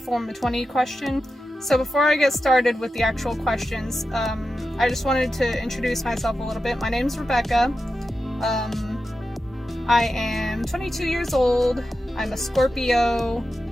form a 20 question. So before I get started with the actual questions, I just wanted to introduce myself a little bit. My name's Rebecca. I am 22 years old. I'm a Scorpio.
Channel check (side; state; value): both; normal; correlation 0.91